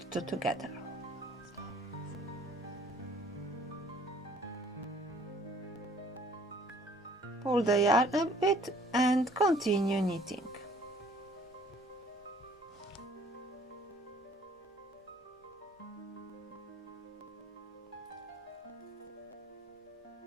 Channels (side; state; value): both; normal; correlation 0.56